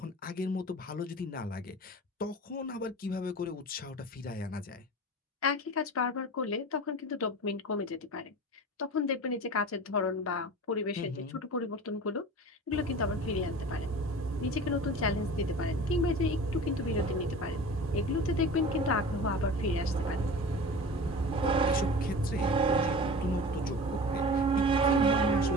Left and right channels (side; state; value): both; normal; correlation 0.36